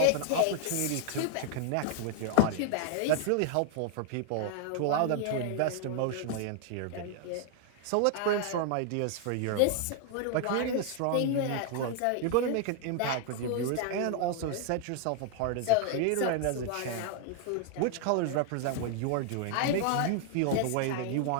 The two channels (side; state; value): both; different; correlation 0.00